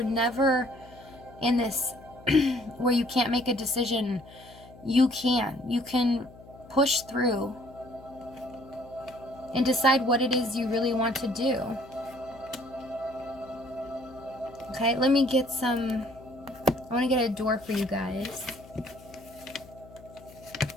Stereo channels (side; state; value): left; noise; hum, 20 dB below the sound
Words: never in this where you can't make a decision. You can push through and decide what it is you really want to do. Okay, let me get I want to get a door for you guys.